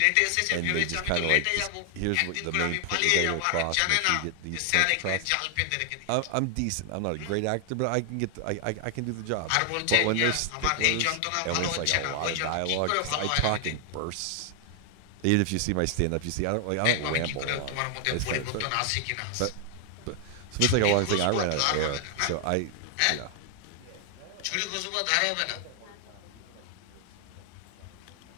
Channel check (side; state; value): both; different; correlation 0.00